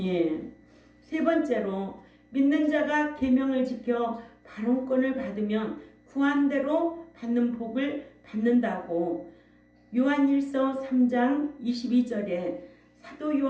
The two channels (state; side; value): identical; both; correlation 1.00